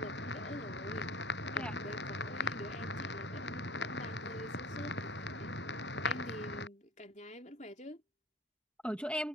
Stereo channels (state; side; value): normal; both; correlation 0.41